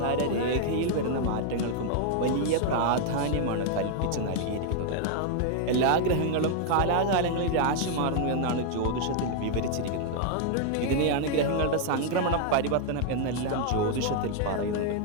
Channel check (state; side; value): different; both; correlation 0.00